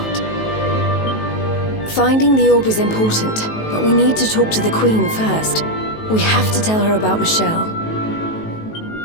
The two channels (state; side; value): late; right; 19 ms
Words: Finding the orb is important, but we need to talk to the Queen first. We have to tell her about Michelle.